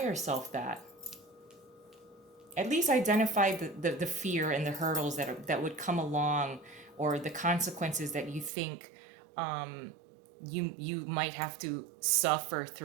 yourself that? At least identify the fear and the hurdles that would come along, or the consequences that you think you might have to suffer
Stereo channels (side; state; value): left; drops out; at 8.5 s